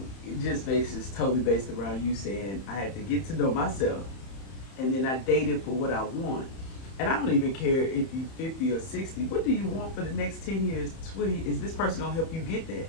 just is totally based around you saying, "I had to get to know myself, and then I dated for what I want." And I don't even care if you're 50 or 60. What do you want for the next 10 years, 20? Is this person gonna help you get that,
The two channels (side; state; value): right; late; 31 ms